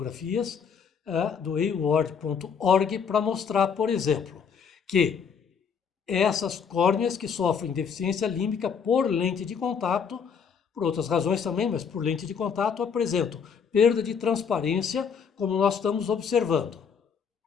do award.org para mostrar, por exemplo, que essas córneas que sofrem deficiência límbica por lente de contato, por outras razões também, mas por lente de contato, apresentam perda de transparência, como nós estamos observando.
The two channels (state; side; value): quieter; right; 6.6 dB